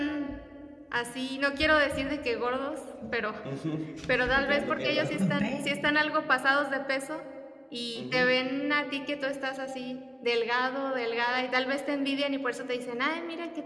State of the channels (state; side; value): identical; both; correlation 1.00